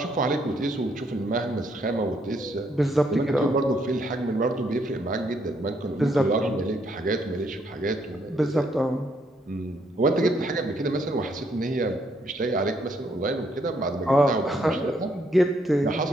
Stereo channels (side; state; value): both; normal; correlation 0.72